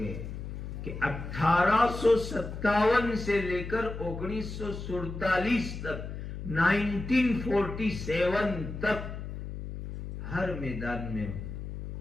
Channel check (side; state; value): left; noise; hum, 8 dB below the sound